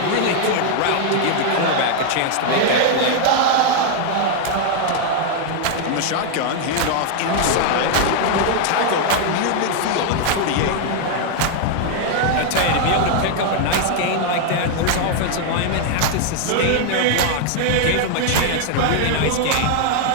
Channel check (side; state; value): both; different; correlation 0.00